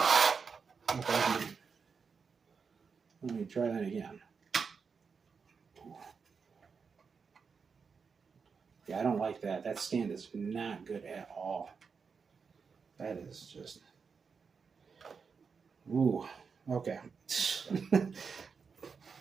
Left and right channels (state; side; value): quieter; left; 5.6 dB